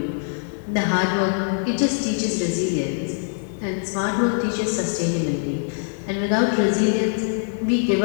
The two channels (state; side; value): silent; right; digital silence